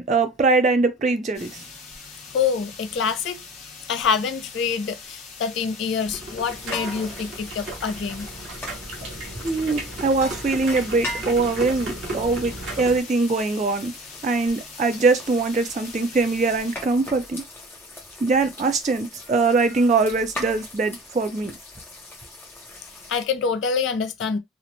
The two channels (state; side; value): normal; both; correlation 0.40